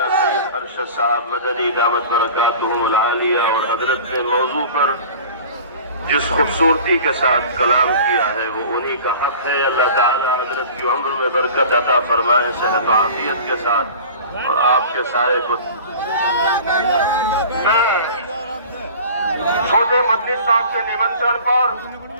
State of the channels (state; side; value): inverted; both; correlation -0.41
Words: سید ارشد صاحب مدنی دامت برکاتہم العالیہ، اور حضرت نے موضوع پر جس خوبصورتی کے ساتھ کلام کیا ہے وہ انہی کا حق ہے. اللہ تعالی حضرت کی عمر میں برکت عطا فرمائے، صحت و عافیت کے ساتھ، اور آپ کے سائے کو. چھوٹے مدنی صاحب کے نمنترن پر